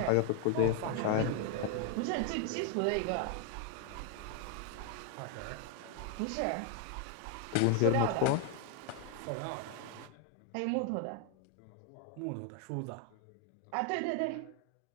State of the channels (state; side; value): different; both; correlation 0.00